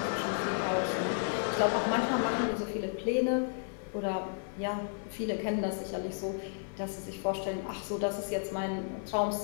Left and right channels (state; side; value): silent; right; 56 dB below the other